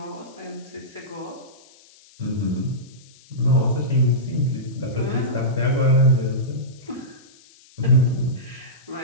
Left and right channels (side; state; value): left; noise; hiss, 26 dB below the sound